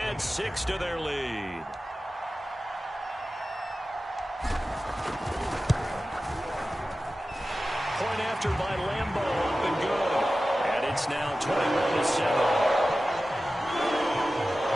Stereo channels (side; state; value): both; normal; correlation 0.95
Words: 6 to their lead. Point after by Lambeau, up and good. And it's now 21-7.